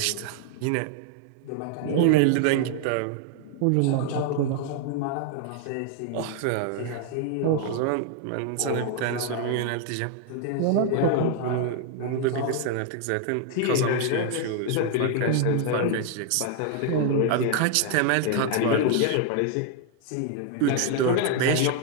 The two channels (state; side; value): different; both; correlation 0.00